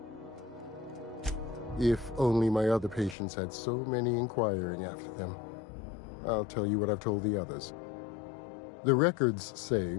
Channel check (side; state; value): right; drops out; at 3.2 s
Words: If only my other patients had so many inquiring after them. I'll tell you what I've told the others. The records say